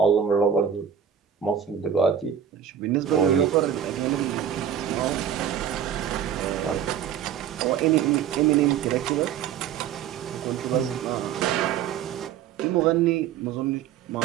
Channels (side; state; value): left; quieter; 8.9 dB